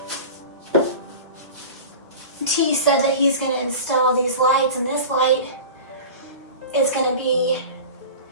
T said that he's going to install these lights, and this light is going to be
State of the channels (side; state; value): both; inverted; correlation -0.34